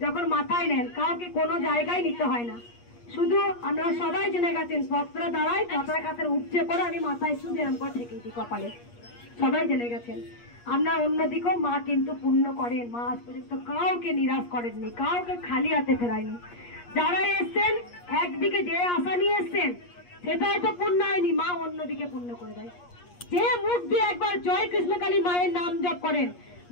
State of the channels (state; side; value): late; right; 8.4 ms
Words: যখন মাথায় নেন, কাউকে কোনো জায়গায় নিতে হয় না। শুধু আমরা সবাই জেনে গেছেন ভক্তরা দাঁড়ায় কাতার কাতার উপচে পড়ে, আমি মাথায় শুধু এরম করে ঠেকেই দিই কপালে, সবাই জেনে গেছেন। আমরা অন্যদিকেও মা কিন্তু পূর্ণ করেন, মা আজ পর্যন্ত কাউকে নিরাশ করেননি, কাউকে খালি হাতে ফেরায়নি। যারা এসছেন একদিকে যে আশা নিয়ে এসছেন সেটাই তো পূর্ণ হয়নি, মা অন্যদিকে পূর্ণ করে দেয়। যে মুখ দিয়ে একবার জয় কৃষ্ণকালী মায়ের নাম জপ করেন,